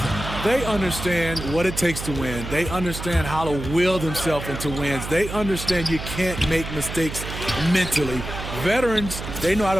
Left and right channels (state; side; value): noise; right; hum, 8 dB below the sound